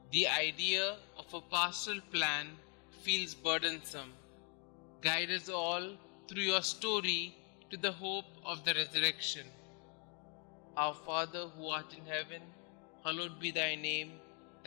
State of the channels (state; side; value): quieter; right; 35.4 dB